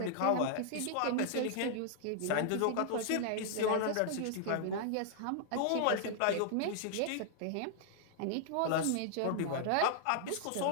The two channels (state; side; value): different; both; correlation -0.01